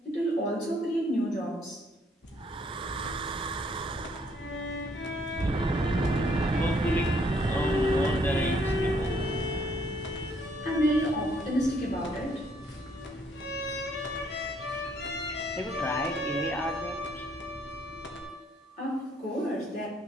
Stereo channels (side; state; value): both; normal; correlation 0.67